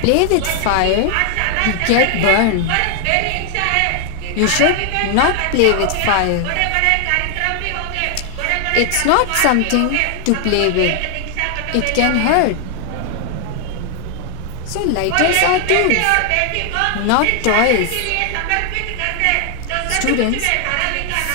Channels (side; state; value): both; different; correlation 0.00